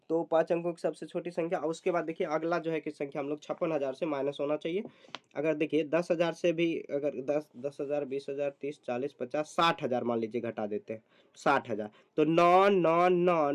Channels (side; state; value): both; identical; correlation 1.00